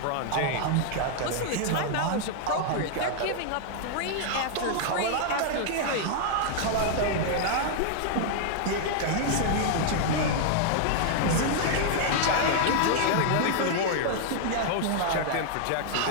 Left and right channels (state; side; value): different; both; correlation 0.00